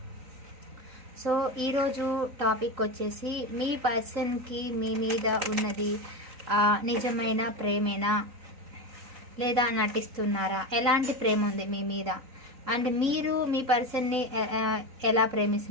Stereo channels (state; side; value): late; left; 3.9 ms